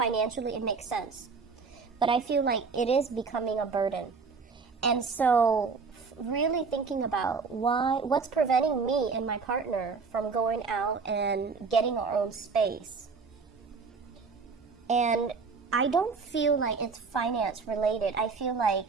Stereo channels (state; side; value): quieter; left; 4.9 dB